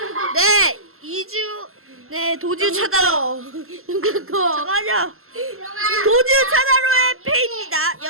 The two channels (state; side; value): late; left; 0.62 ms